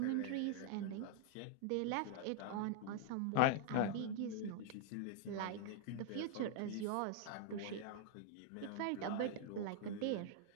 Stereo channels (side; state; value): both; different; correlation -0.01